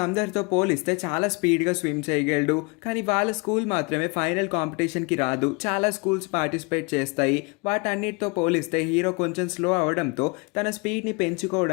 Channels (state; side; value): quieter; right; 30.2 dB